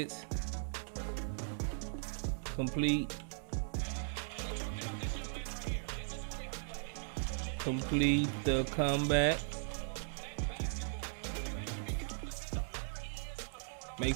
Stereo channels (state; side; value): silent; left; 52 dB below the other